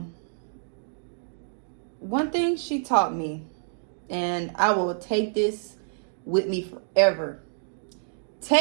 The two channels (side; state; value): left; silent; digital silence